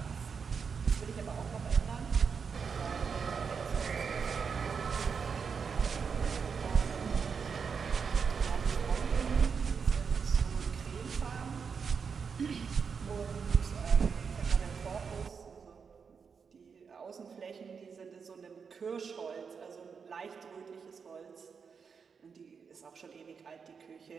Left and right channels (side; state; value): left; quieter; 6.0 dB